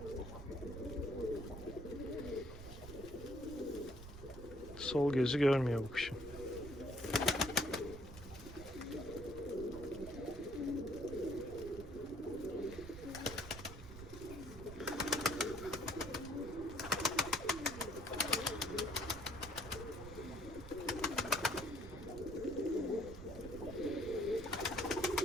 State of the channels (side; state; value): right; noise; rumble, 12 dB below the sound